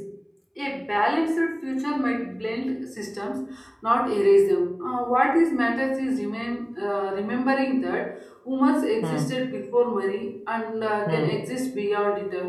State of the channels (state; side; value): identical; both; correlation 1.00